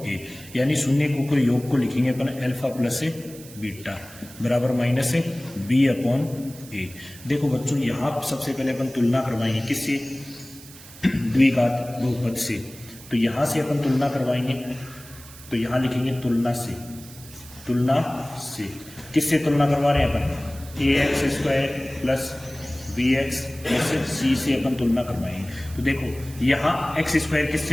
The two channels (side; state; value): right; noise; hiss, 18 dB below the sound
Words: ए। यानी शून्यकों के योग को लिखेंगे अपन अल्फा प्लस बीटा बराबर माइनस बी अपॉन ए। देखो बच्चों, यहाँ सबसे पहले अपन तुलना करवाएंगे किससे, द्विघात बहुपद से। तो यहां से अपन तुलना करवाएंगे, तो यहां लिखेंगे तुलना से। तुलना से किससे तुलना करवा रहे हैं अपन, ax square plus bx plus c से अपन तुलना करवाएंगे। तो देखो यहाँ x स्क्वायर